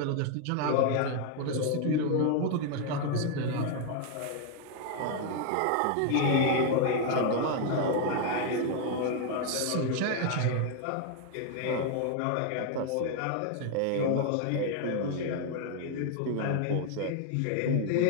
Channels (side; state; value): both; different; correlation 0.00